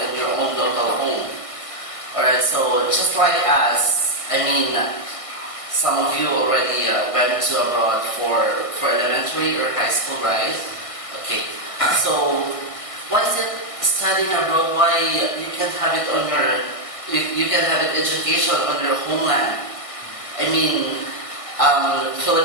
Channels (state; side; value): late; right; 1.5 ms